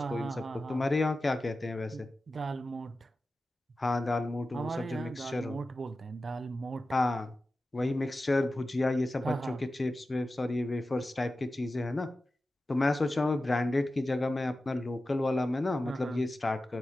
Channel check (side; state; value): both; normal; correlation 0.94